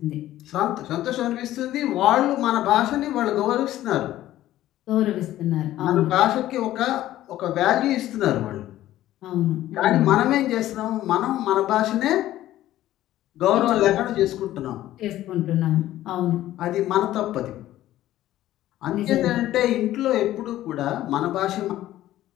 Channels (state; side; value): quieter; right; 14.1 dB